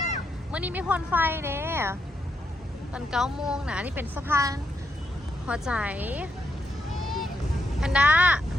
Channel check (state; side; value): normal; both; correlation 0.80